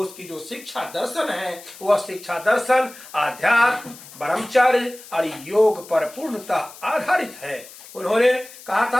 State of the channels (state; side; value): noise; left; hiss, 18 dB below the sound